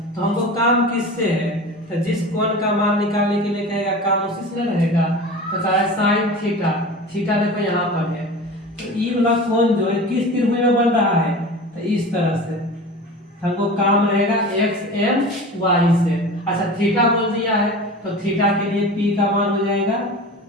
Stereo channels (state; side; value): normal; both; correlation 0.34